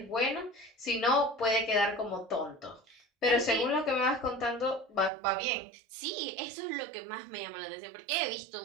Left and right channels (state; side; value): drops out; left; at 5.1 s